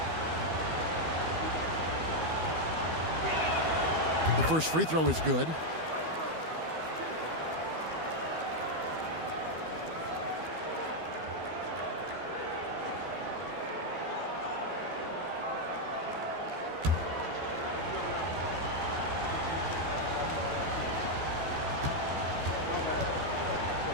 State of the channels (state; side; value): late; left; 12 ms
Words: The first free throw is good.